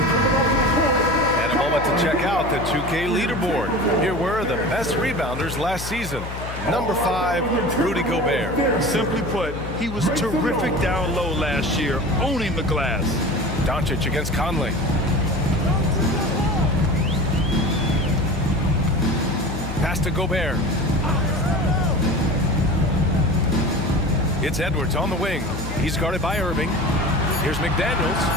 And a moment to check out the 2K leaderboard. Here were the best rebounders last season. Number 5, Rudy Gobert. Simply put, he was terrific down low last year, owning the glass. Doncic against Conley. Pass to Gobert. It's Edwards on the wing. He's guarded by Irving. Here's McDaniels.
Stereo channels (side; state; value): left; noise; hum, 9 dB below the sound